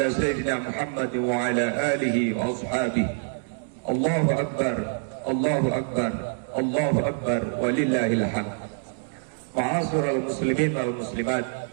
سيدنا محمد وعلى آله وأصحابه. الله أكبر، الله أكبر، الله أكبر ولله الحمد. Ma'asyiral muslimin wal muslimat,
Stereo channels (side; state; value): left; silent; digital silence